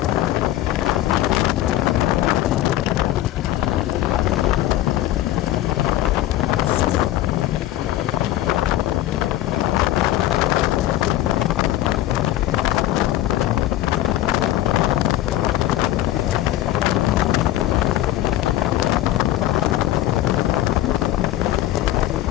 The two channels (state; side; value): quieter; right; 14.5 dB